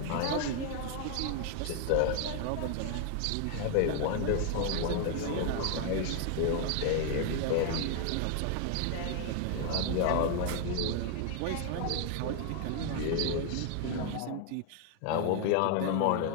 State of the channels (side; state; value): both; different; correlation 0.00